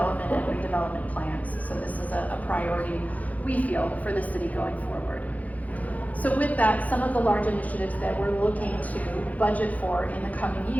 and redevelopment plans. So this is a priority, we feel, for the city going forward. So with that, some of the large initiatives that we're looking to budget for in the coming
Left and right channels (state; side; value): late; right; 0.075 ms